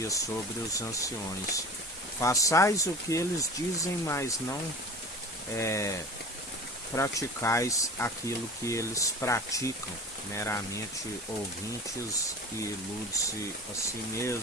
sobre os anciões: façais o que eles dizem, mas não praticais aquilo que eles praticam, meramente ouvintes, e ilude-se a si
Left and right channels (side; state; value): both; normal; correlation 0.37